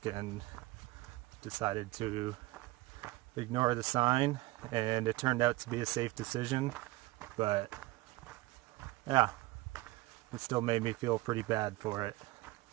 and decided to ignore the sign, and it turned out to be a safe decision, but yeah, it still made me feel pretty bad for it,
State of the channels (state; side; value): quieter; left; 19.9 dB